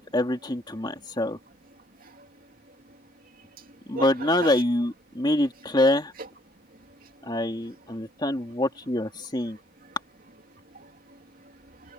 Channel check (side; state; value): both; normal; correlation 0.65